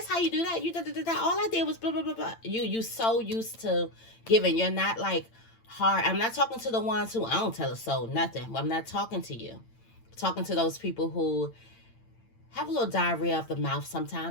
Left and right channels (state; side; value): late; right; 8.9 ms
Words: how you do that. You da. All I did was blah blah blah blah. You so used to giving. You're not like hard. I'm not talking to the ones who I don't tell a soul nothing. I'm not talking to you. I'm talking to those people who have a little diarrhea of the mouth